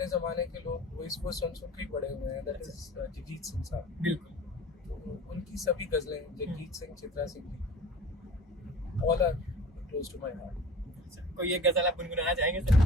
ज़माने के लोग वो इसको सुन के ही बड़े हुए हैं, दैट इज जगजीत सिंह साहब। बिल्कुल, तो उनकी सभी गज़लें, Jagjit Singh, Chitra Singh ji, all are close to my heart. कोई एक गजल आप गुनगुनाना चाहेंगे सर?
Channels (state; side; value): normal; both; correlation 0.43